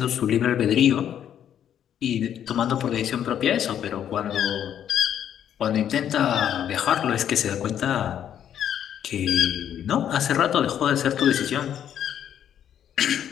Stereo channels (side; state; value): right; quieter; 9.7 dB